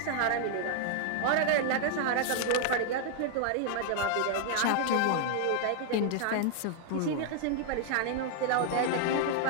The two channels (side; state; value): both; different; correlation -0.01